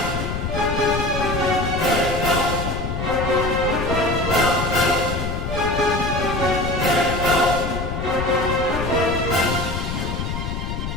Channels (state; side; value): noise; left; rumble, 4 dB below the sound